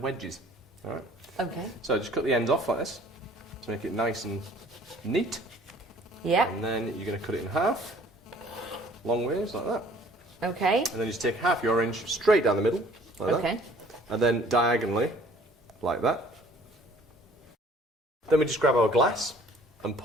All right. Okay. So just cut the ends off like this to make it nice and neat. Yeah. And then you're going to cut it in half, long ways like that. Okay. And then you just take half your orange straight down the middle, like that. Okay. And then diagonally, like that. Then we just grab our glass and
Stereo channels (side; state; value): both; normal; correlation 0.54